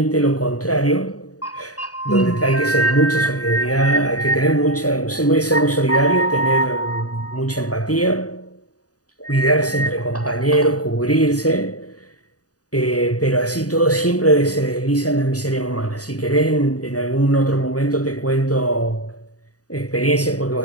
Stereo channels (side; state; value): right; late; 0.67 ms